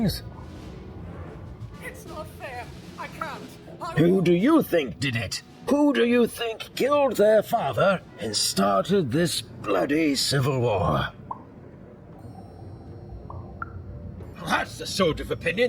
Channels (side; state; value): both; identical; correlation 1.00